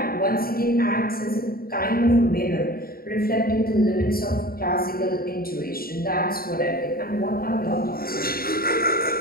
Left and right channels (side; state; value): right; late; 0.43 ms